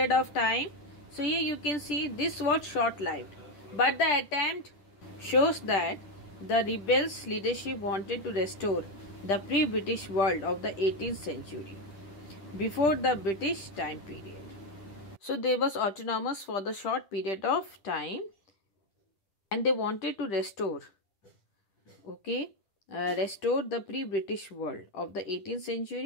of time. So here you can see this was short-lived, but the attempt shows that the rebels' leadership wanted to restore the pre-British world of the 18th century, before the British time period. So they was autonomous for the short period of time, and they wanted to restore, okay, restore the pre-British world of the 18th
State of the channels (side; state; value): right; late; 10 ms